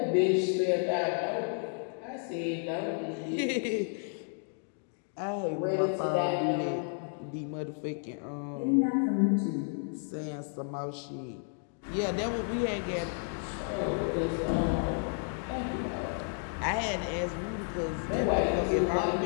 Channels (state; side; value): silent; right; 57 dB below the other